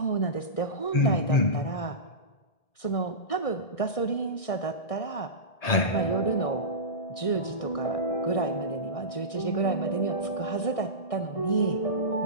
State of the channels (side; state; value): right; late; 1.6 ms